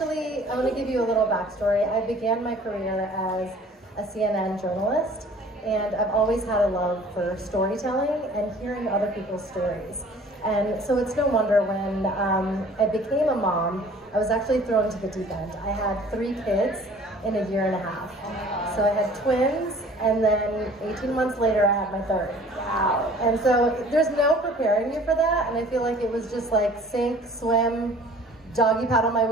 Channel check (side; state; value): both; normal; correlation 0.50